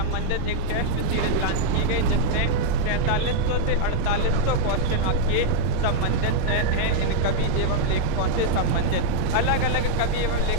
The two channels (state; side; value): different; both; correlation 0.00